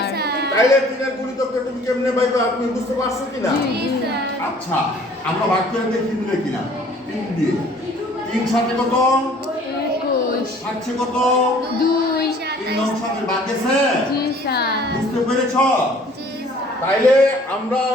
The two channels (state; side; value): normal; both; correlation 0.54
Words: তাইলে 3 এর গুণিতককে তুমি কেমনে পাইবে আপনি বুঝতে পারছো কিনা? জি স্যার আচ্ছা আমরা ভাগ করে দেখি মিলে কিনা, 3 দিয়ে 3 সাথে কত 21, 7 কত 2, 3 9 সাথে ভাগ গেছে, জি স্যার। বুঝতে পেরেছ? জি স্যার তাইলে আমরা